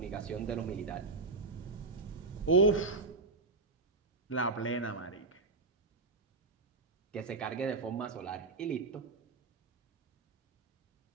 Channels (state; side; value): quieter; left; 3.7 dB